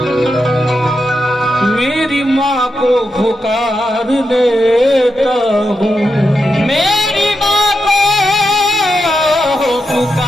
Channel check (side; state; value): both; normal; correlation 0.86